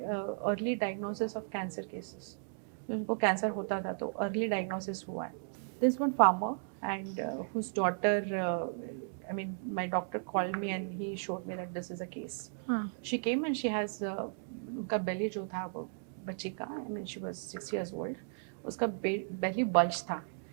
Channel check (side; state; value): left; silent; digital silence